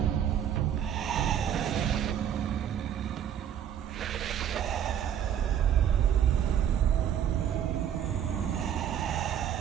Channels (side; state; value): left; quieter; 9.6 dB